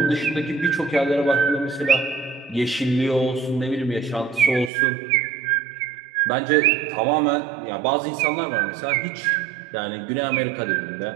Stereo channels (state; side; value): drops out; left; at 4.7 s